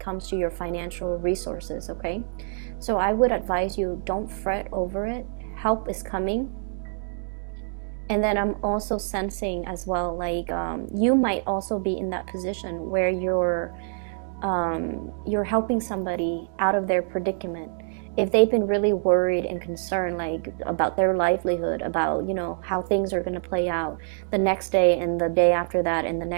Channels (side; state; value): left; silent; digital silence